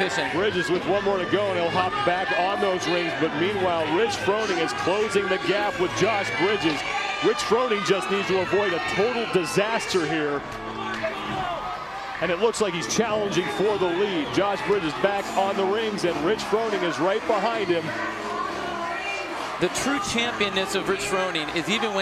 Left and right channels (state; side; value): noise; left; hum, 29 dB below the sound